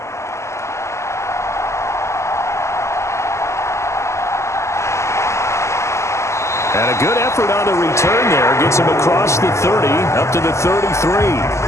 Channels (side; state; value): right; late; 0.13 ms